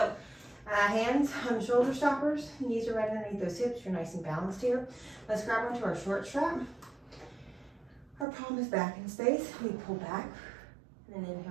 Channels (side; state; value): left; drops out; at 8.2 s